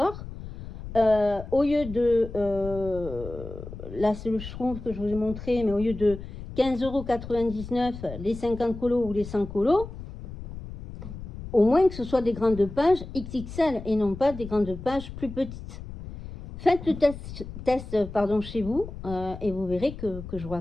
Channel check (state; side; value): noise; left; rumble, 11 dB below the sound